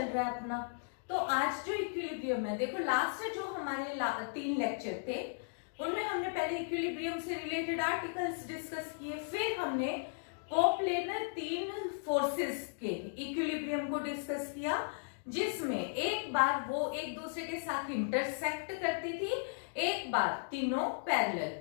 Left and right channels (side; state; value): right; silent; digital silence